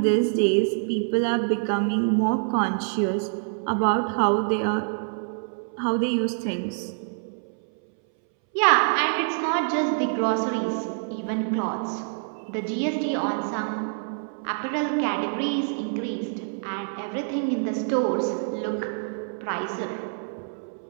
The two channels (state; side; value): silent; left; 61 dB below the other